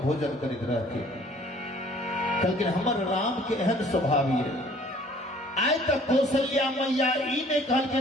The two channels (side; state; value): both; normal; correlation 0.54